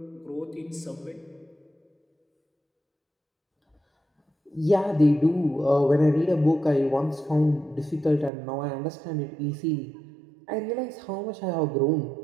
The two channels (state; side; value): drops out; left; at 8.3 s